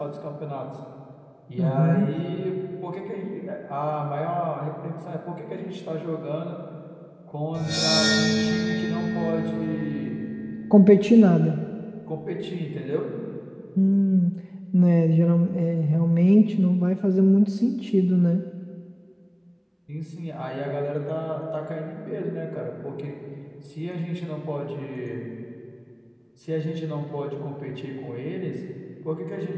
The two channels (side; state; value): both; identical; correlation 1.00